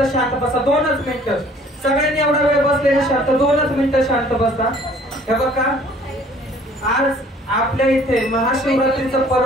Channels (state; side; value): normal; both; correlation 0.55